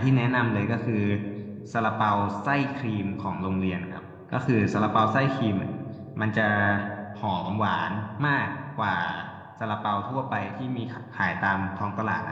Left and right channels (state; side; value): identical; both; correlation 1.00